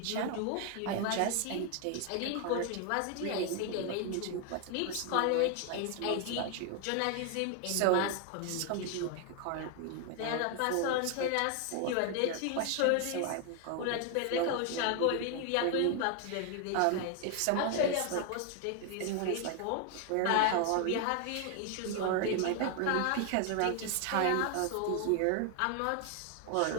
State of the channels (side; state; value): both; different; correlation 0.00